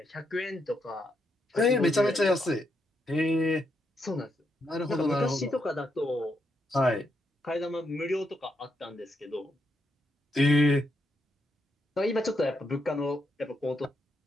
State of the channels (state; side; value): normal; both; correlation 0.80